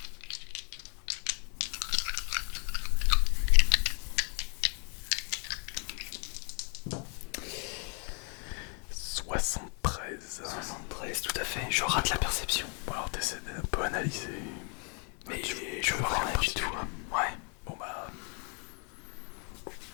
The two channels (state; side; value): quieter; right; 37.6 dB